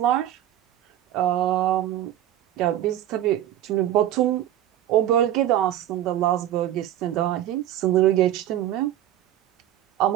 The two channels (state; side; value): quieter; left; 12.3 dB